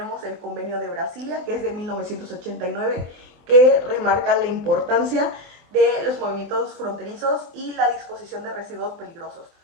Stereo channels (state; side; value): late; left; 24 ms